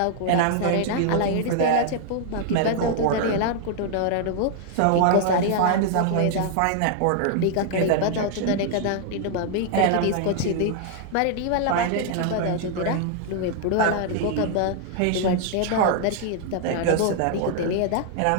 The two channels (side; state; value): both; different; correlation -0.01